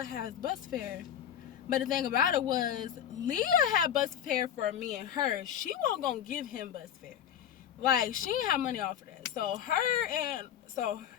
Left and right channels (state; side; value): quieter; right; 9.7 dB